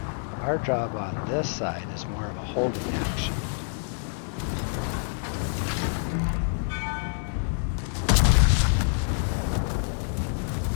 our job on this side is more of a holding action.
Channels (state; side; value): silent; right; 60 dB below the other